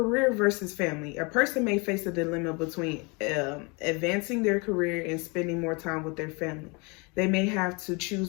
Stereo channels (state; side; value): quieter; right; 29.9 dB